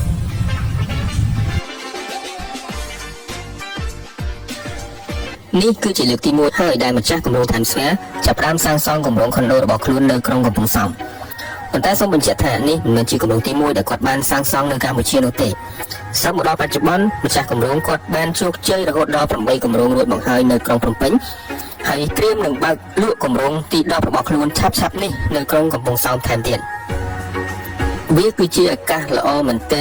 នេះគឺជាលើកទី1ហើយដែលម្ចាស់គម្រោង Times Square ចាប់ផ្ដើមសាងសង់គម្រោងខុនដូរបស់ខ្លួននៅក្រុងកំពង់សោមប៉ុន្តែសូមបញ្ជាក់ថានេះមិនមែនជាគម្រោងទី1ដែលគាត់បានសាងសង់នៅកម្ពុជានោះទេសឹកមកដល់បច្ចុប្បន្នម្ចាស់គម្រោងគាត់បានជោគជ័យរហូតដល់8គម្រោងរួចមកហើយនៅក្រុងភ្នំពេញហើយត្រៀមនឹងបើកលក់គម្រោងទី10របស់ខ្លួនឆាប់ៗនេះនៅក្រុងកំពង់សោមថែមទៀតវាគឺជាឱកាសល្អមែនទែ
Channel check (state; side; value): identical; both; correlation 1.00